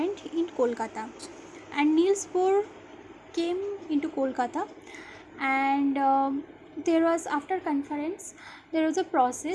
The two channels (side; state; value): both; identical; correlation 1.00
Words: in Kolkata, and Niels Bohr came into Kolkata, and there was after conference there was a